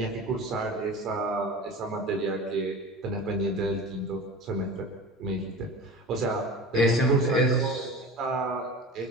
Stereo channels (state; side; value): normal; both; correlation 0.34